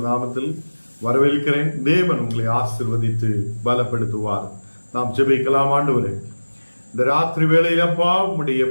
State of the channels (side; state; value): both; inverted; correlation -1.00